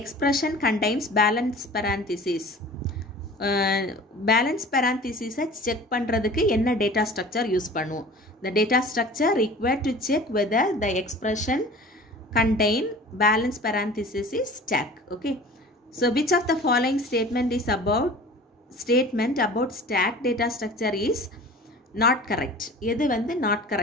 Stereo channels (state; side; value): normal; both; correlation 0.42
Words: contains balance parentheses. Balance பேரந்திசிஸை செக் பண்ணுறதுக்கு என்ன டேட்டா ஸ்ட்ரக்சர் யூஸ் பண்ணுவோம்? The data structure required to check whether the expression contain balance parenthesis is stack. Okay. So which of the following statement about stack data structure is not correct? எது வந்து not